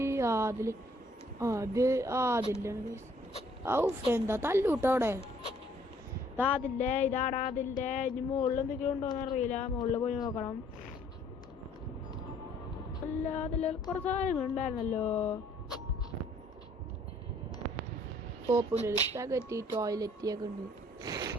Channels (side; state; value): both; normal; correlation 0.61